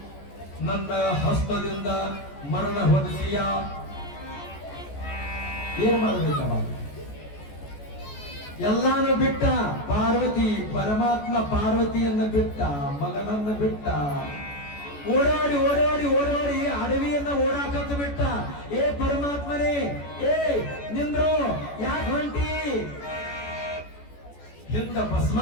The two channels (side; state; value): right; late; 14 ms